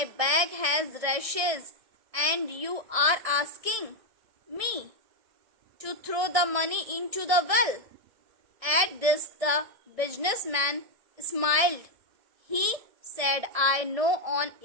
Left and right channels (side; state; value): left; late; 1.6 ms